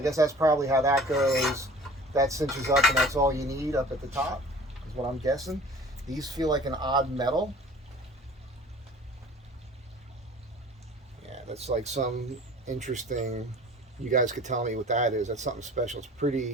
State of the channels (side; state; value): both; normal; correlation 0.45